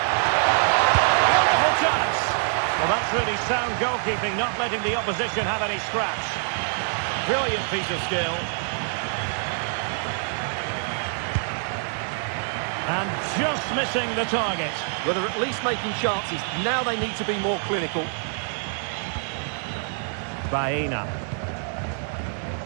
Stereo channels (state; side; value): silent; left; 59 dB below the other